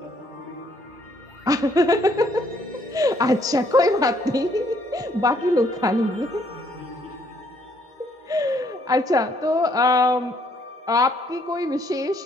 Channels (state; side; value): normal; both; correlation 0.67